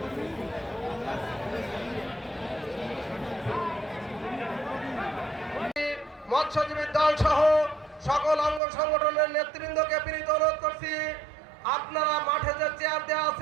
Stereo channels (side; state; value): left; drops out; at 8.6 s